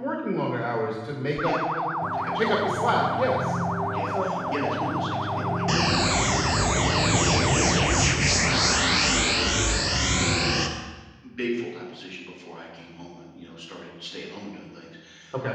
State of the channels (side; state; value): both; identical; correlation 1.00